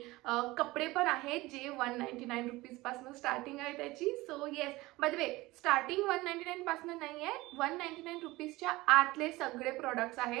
कपडे पण आहेत जे 199 रुपीज पासून स्टार्टिंग आहे त्याची। So yes, by the way starting 199 पासून नाही आहे, 199 रुपीजच्या आतले सगळे प्रोडक्ट्स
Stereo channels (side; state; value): left; quieter; 20.0 dB